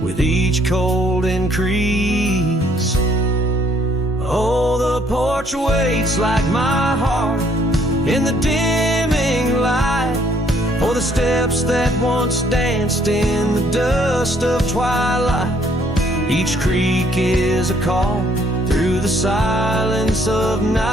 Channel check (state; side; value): normal; both; correlation 0.65